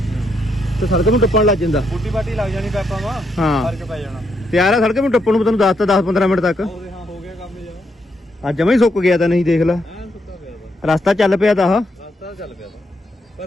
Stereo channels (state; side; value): normal; both; correlation 0.78